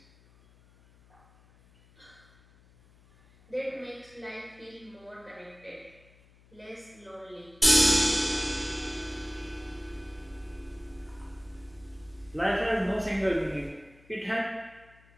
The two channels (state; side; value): noise; left; hum, 27 dB below the sound